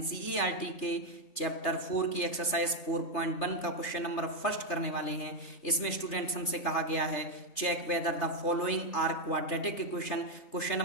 के chapter 4 की एक्सरसाइज 4.1 का क्वेश्चन नंबर फर्स्ट करने वाले हैं। इसमें स्टूडेंट्स हमसे कहा गया है check whether the following are quadratic equation. Question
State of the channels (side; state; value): right; late; 3.3 ms